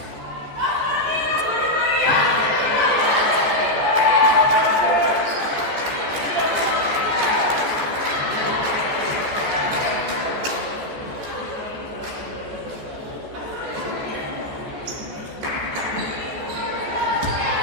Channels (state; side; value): late; left; 14 ms